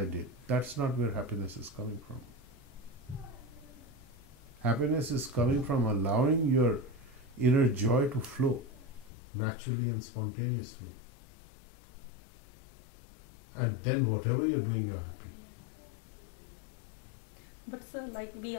did. That's not where happiness is coming from. Happiness is coming from allowing your inner joy to flow naturally and spontaneously. And then whatever you're doing, you're happy. But sir, like we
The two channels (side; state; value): right; drops out; at 9.1 s